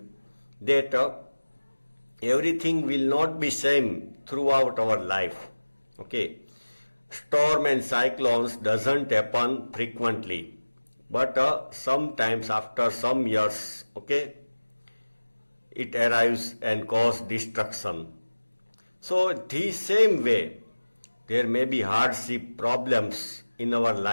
that everything will not be same throughout our life. Okay, storm and cyclones doesn't happen frequently, but sometimes after some years, okay, it arrives and cause destruction. So the same way, there may be hardship, problems in our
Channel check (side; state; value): both; inverted; correlation -1.00